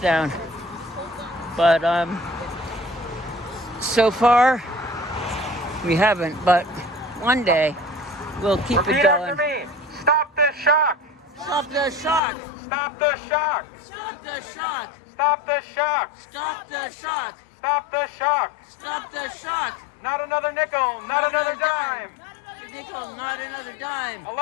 But so far, we haven't. But one day, we'll keep it Repeat going. after me. Stop the shock. Stop the shock! Stop the shock. Stop the shock! Stop the shock. Stop the shock! Stop the shock. Stop the shock! Not another nickel, not another dime. A nickel, not another dime.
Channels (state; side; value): drops out; right; at 12.2 s